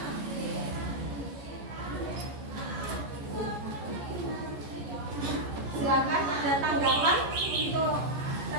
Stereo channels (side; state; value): left; late; 14 ms